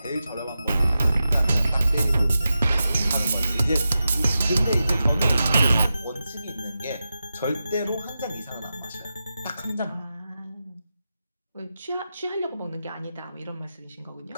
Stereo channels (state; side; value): inverted; both; correlation -0.91